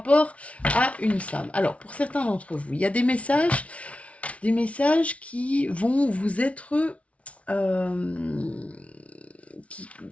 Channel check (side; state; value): right; late; 0.064 ms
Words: à une femme. Alors, pour certains d'entre vous, il y a des messages qui vont vous être...